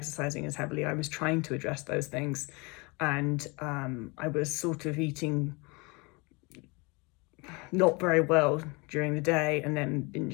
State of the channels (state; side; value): quieter; right; 28.1 dB